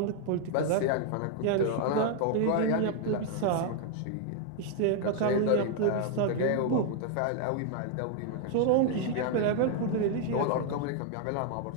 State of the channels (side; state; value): both; different; correlation 0.00